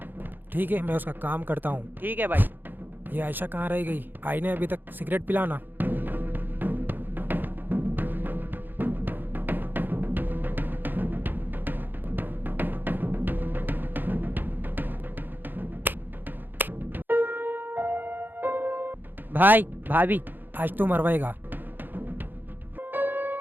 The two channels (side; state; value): left; late; 0.091 ms